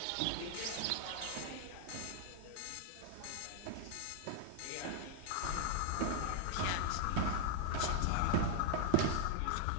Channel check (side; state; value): both; different; correlation -0.01